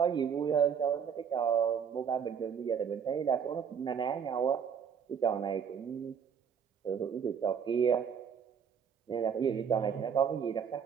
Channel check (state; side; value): quieter; left; 7.3 dB